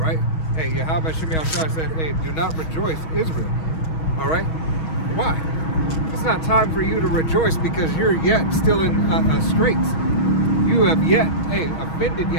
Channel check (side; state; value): right; late; 6.3 ms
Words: Hey, Yahweh Shemiah Shai said, hey, do not rejoice, Israel. All right. Why? It's not time for you to rejoice because you're yet still in straits. You have yet, offended